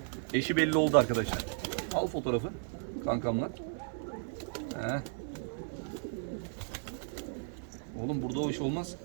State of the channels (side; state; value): left; silent; 55 dB below the other